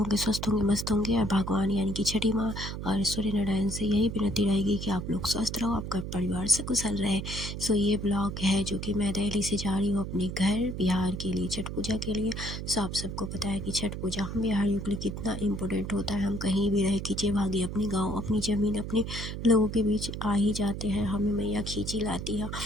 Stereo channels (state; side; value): noise; right; hum, 6 dB below the sound